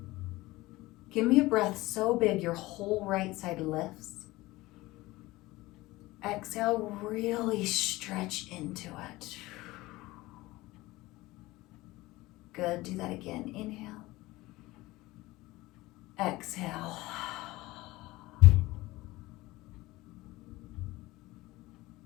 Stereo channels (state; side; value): quieter; right; 19.4 dB